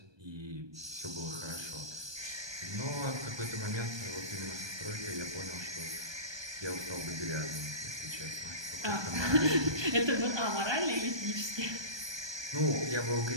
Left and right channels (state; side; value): late; left; 1.2 ms